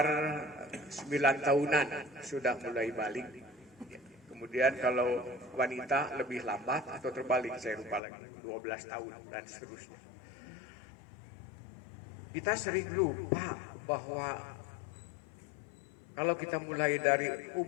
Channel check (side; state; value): right; drops out; at 8.0 s